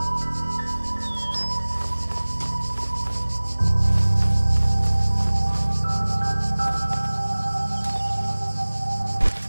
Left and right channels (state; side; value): inverted; both; correlation -1.00